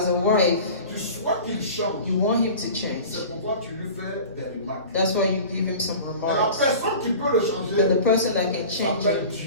a wife, tu souhaites qu'il change. you want him to change. C'est pourquoi tu lui fais des remarques. That's why you give him some Mais la remarks. personne qui peut le But changer the person that can change s'appelle him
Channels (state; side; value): inverted; both; correlation -0.39